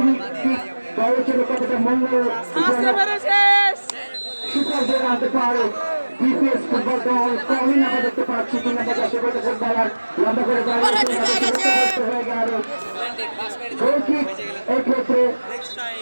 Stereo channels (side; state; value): both; inverted; correlation -1.00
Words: কিক দলের জন্য কতটা মঙ্গল আসতে পেরেছিস সুপার জেলা আনতে পারে বিপিএস ফুটবল দল কমিন আমরা দেখতে পাচ্ছি 3 নম্বর 10 বছর ফুটবলার লম্বা করে হয়ে গেল গোল কিক এই ক্ষেত্রে